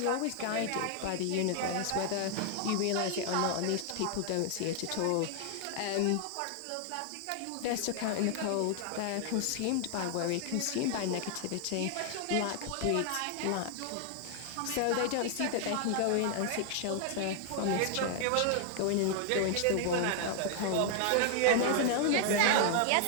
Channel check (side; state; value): both; different; correlation 0.00